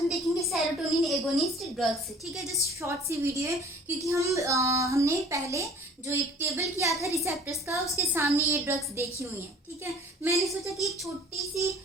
देखेंगे सेरोटोनिन एगोनिस्ट ड्रग्स। ठीक है, जस्ट शॉर्ट सी वीडियो है क्योंकि हमने पहले जो एक टेबल किया था रिसेप्टर्स का, उसके सामने ये ड्रग्स देखी हुई हैं। ठीक है, मैंने सोचा कि एक छोटी सी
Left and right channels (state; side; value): normal; both; correlation 0.49